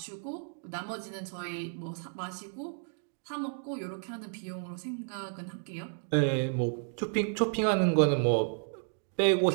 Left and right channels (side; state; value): left; silent; 56 dB below the other